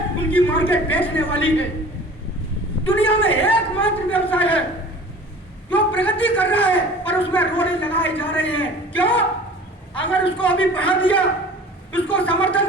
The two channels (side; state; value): both; normal; correlation 0.43